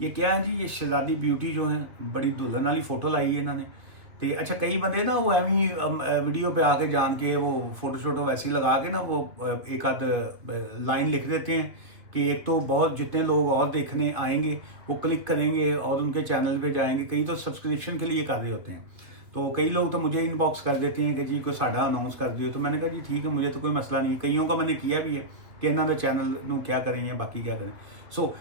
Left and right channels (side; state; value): left; late; 2.3 ms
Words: ये क्या है जी, ये शहजादी ब्यूटी जो है बड़ी दुल्हन वाली फोटो लाई है इन्होंने। तो अच्छा, कई बंदे ना वो एवं वीडियो पे आके जान के वो फोटो शोटो वैसी लगा के ना वो एक आध लाइन लिख देते हैं कि एक तो बहुत जितने लोग और देखने आएंगे वो क्लिक करेंगे और उनके चैनल पे जाएंगे। कई तो सब्सक्रिप्शन के लिए कर रहे होते हैं, तो कई लोग तो मुझे इनबॉक्स कर देते हैं कि जी कोई साडा अनाउंस कर दियो। तो मैंने कहा जी ठीक है, मुझे तो कोई मसला नहीं है। कईयों का मैंने किया भी है कि इन्हों का चैनल नू क्या करें या बाकी क्या करें। सो